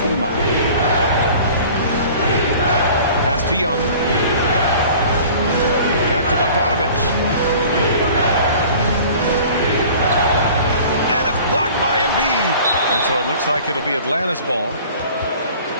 team up. Pass to Young. Back to Bogdanovich. And it's blocked by Embiid. And so it looks like it'll be Atlanta's ball.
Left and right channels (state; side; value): inverted; both; correlation -0.46